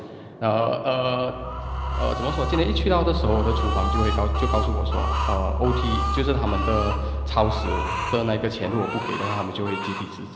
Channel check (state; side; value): identical; both; correlation 1.00